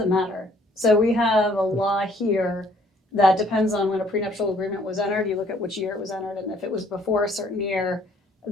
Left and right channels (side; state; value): both; normal; correlation 0.62